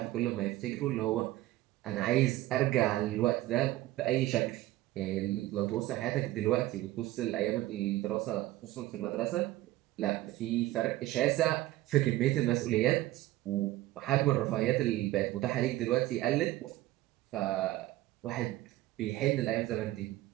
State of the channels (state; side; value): quieter; left; 16.4 dB